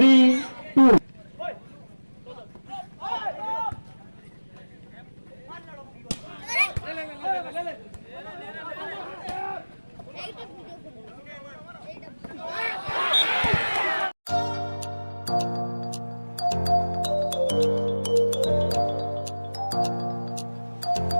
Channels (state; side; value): inverted; both; correlation -1.00